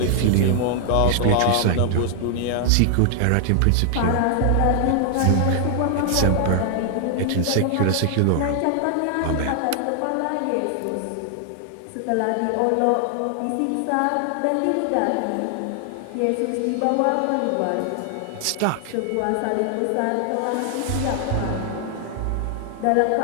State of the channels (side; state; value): both; different; correlation 0.00